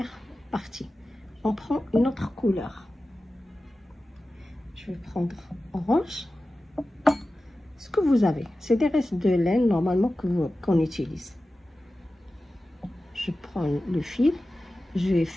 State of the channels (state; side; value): normal; both; correlation 0.95